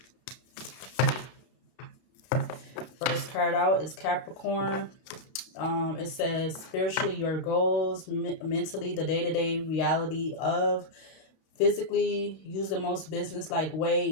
First card out is Capricorn. It says spiritually your goals, mentally the day-to-day reality of, physically use the most business-like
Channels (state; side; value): late; right; 31 ms